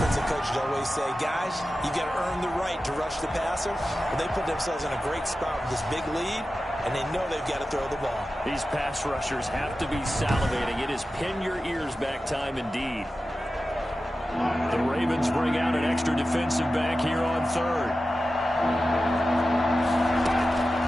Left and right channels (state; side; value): normal; both; correlation 0.93